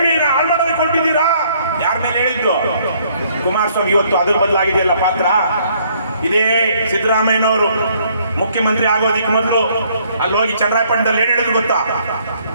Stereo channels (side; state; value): both; inverted; correlation -0.65